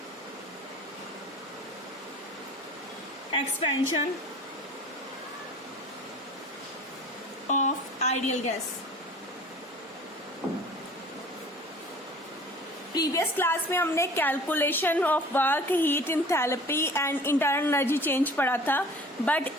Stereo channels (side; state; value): both; normal; correlation 0.45